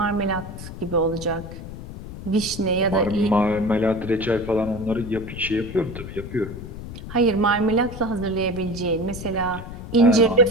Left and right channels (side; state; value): left; noise; rumble, 11 dB below the sound